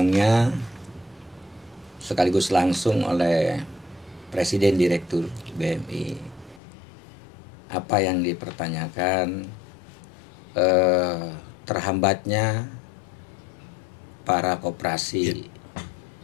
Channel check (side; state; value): right; drops out; at 6.6 s